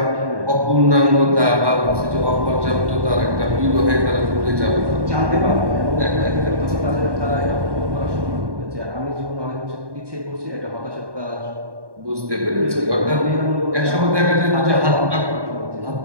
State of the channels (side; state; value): left; late; 1.2 ms